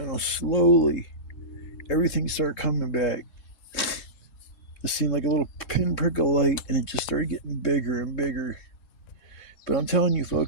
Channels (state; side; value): late; right; 3.7 ms